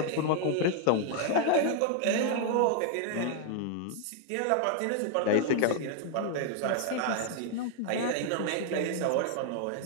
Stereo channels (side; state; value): both; different; correlation 0.00